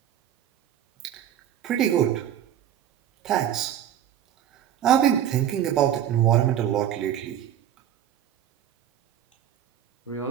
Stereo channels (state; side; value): quieter; left; 10.5 dB